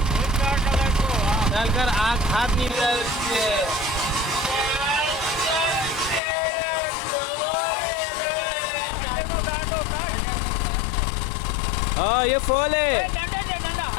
डालकर आग हाथ नहीं हाँ ये फॉल है।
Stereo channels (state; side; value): drops out; right; at 6.2 s